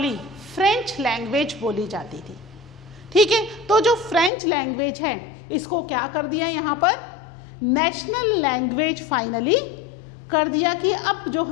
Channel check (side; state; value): right; drops out; at 4.3 s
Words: फ्रेंच लैंग्वेज बोली जाती थी। ठीक है, तो जो फ्रेंच लैंग्वेज है इसको क्या कर दिया यहाँ पर, नेशनल लैंग्वेज फाइनली कर दिया कि अब जो